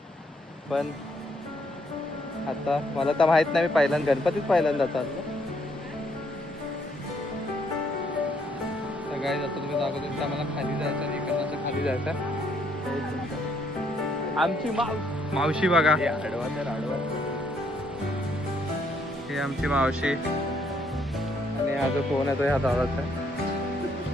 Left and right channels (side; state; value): both; normal; correlation 0.70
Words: पण आता मला तर माहित नाही, मी पहिल्यांदा गणपतीच पहिल्यांदा चाललो. सगळ्यात आता तुम्ही दाखवतो की आम्हाला खाली जायचं आणि इकडनं खाली जायचं. आमची मावशी बघा, आडवा तर आडवा. ही आमची मावशी आणि हा जो फोन आहे तो ह्या दादाचा आहे.